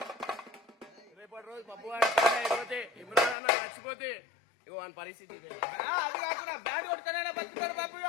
రేపటి రోజు బబ్బు అయిపోతే ఇమ్రాన్ అన్న చచ్చిపోతే ఇగో వాని పరిస్థితి ఇదే. అది కాకుండా బ్యాట్ కొట్టుకునే బతుకుతారు బాబు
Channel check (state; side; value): drops out; right; at 3.4 s